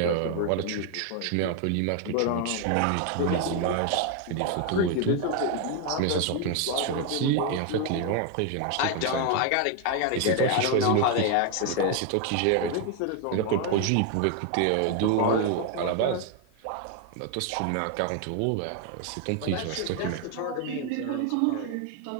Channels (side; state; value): both; different; correlation 0.01